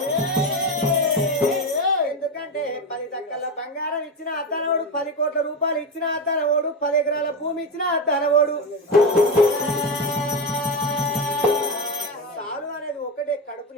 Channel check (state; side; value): normal; both; correlation 0.16